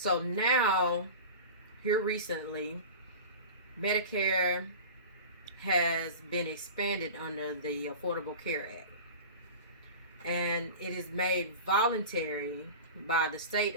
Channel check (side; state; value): both; inverted; correlation -0.33